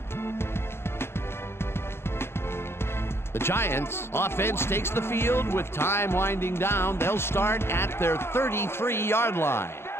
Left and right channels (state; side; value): late; right; 0.12 ms